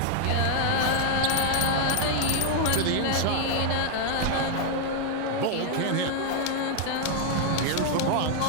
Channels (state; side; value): different; both; correlation -0.01